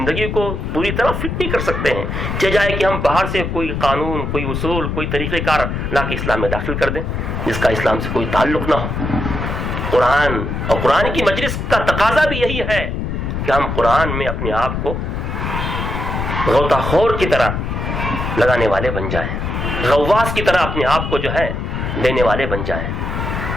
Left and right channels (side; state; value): left; noise; rumble, 3 dB below the sound